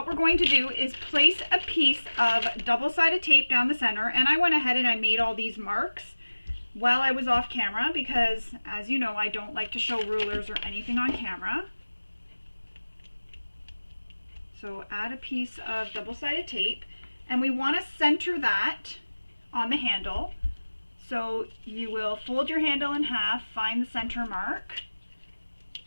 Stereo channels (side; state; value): both; inverted; correlation -1.00